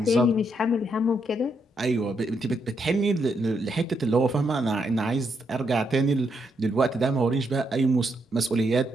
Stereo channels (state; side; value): normal; both; correlation 0.78